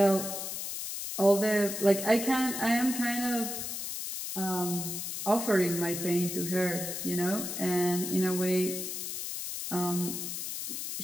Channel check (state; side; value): noise; left; hiss, 5 dB below the sound